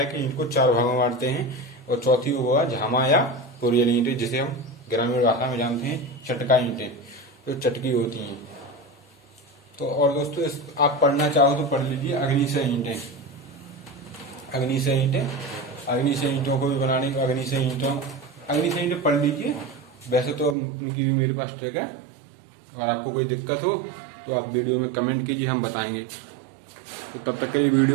कि ईंट को 4 भागों में बांटते हैं, और चौथी वो है झामा या कोरियल ईंटें, जिसे हम ग्रामीण भाषा में जानते हैं चटका ईंटें, जो चटकी होती हैं। तो और दोस्तों आप पढ़ना चाहो तो पढ़ लीजिए अग्निशय ईंटें, अग्निशय ईंटों को भी बनाने, अग्निशय ईंटें पढ़ लीजिए। वैसे तो उनकी भी मेरे पास ट्रिक है, अगर आपको कोई दिक्कत हो तो आप वीडियो में कमेंट कीजिए, हम बताएंगे। तो तब तक के लिए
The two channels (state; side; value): drops out; left; at 20.6 s